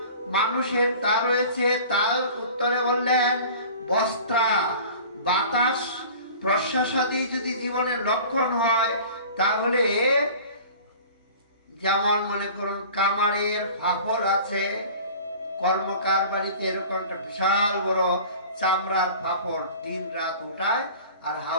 মানুষের তা রয়েছে, তার উত্তরে বললেন বস্ত্রা বাতাস প্রশ্বাসাদি যদি জীবনের লক্ষণ হয় তাহলে যেমন মনে করুন কামারের ফাফর আছে, কর্মকার বাড়িতে এরকম একটা বিশাল বড় চামড়ার ফাফর দিন রাত উঠায় আর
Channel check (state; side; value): inverted; both; correlation -0.42